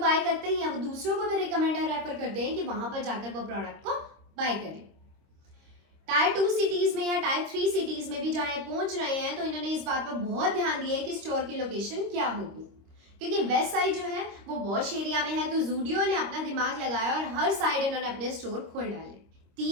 करते ही हैं, वो दूसरों को भी रिकमेंड और रेफर करते हैं कि वहां पर जाकर वो प्रोडक्ट को बाय करें। टायर 2 सिटीज में या टायर 3 सिटीज में भी जहां पहुंच रहे हैं, तो इन्होंने इस बात पर बहुत ध्यान दिया है कि स्टोर की लोकेशन क्या होगी। क्योंकि वेस्ट साइड जो है वो वॉश एरिया में है, तो ज़ूडियो ने अपना दिमाग लगाया और हर साइड इन्होंने अपने स्टोर खोल डाले।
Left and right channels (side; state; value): left; late; 26 ms